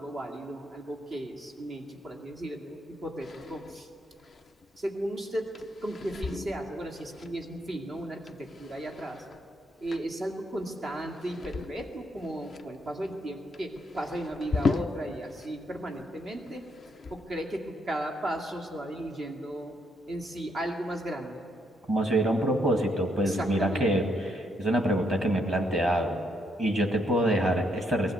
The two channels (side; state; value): both; normal; correlation 0.75